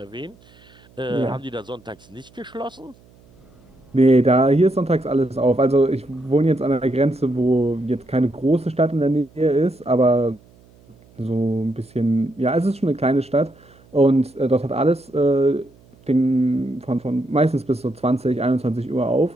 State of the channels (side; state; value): right; noise; hum, 28 dB below the sound